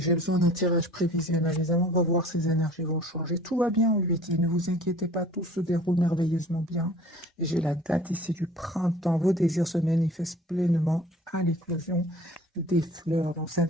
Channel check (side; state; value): both; normal; correlation 0.48